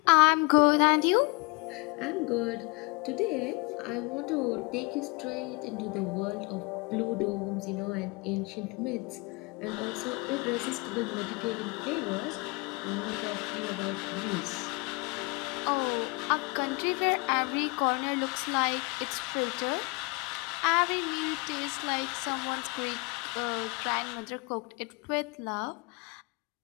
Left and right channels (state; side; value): quieter; right; 28.0 dB